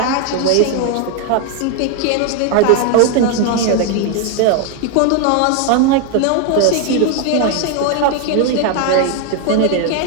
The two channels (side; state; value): both; different; correlation 0.01